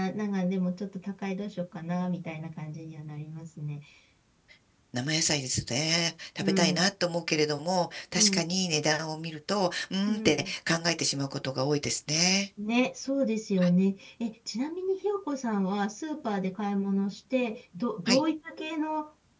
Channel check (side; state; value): both; identical; correlation 1.00